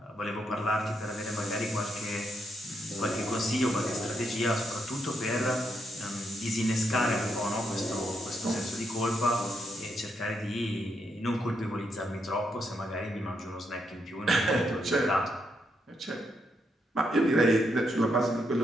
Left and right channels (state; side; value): normal; both; correlation 0.79